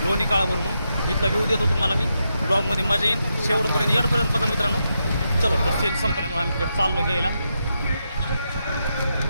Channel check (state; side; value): inverted; both; correlation -0.84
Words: लोणी काळावरून. इथला व्ह्यू देतो तुम्हाला मी. ब्लॉगमध्ये मजा येईल. शेवटपर्यंत एडपर्यंत बघा मित्रांनो. चलो तर सेल संपल्यामुळे आम्ही तिकडे चाललो घ्यायला.